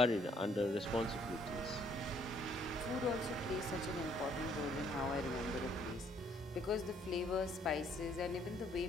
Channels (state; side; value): normal; both; correlation 0.65